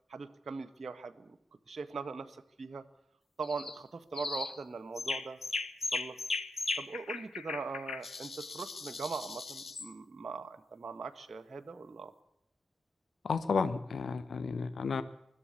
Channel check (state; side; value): normal; both; correlation 0.83